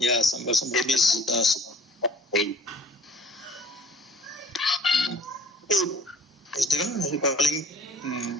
some babies. Is there calling?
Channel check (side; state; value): both; normal; correlation 0.50